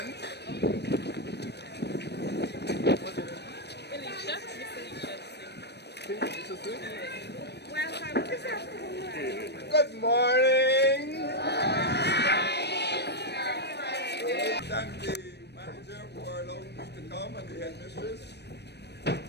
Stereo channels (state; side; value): late; right; 0.49 ms